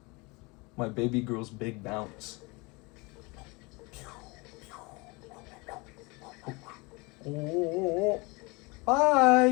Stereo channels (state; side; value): quieter; right; 26.8 dB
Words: baby girl's big bounce. Oh,